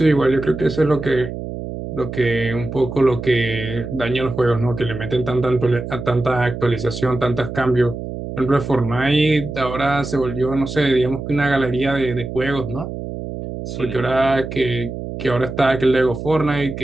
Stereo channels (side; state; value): right; noise; hum, 8 dB below the sound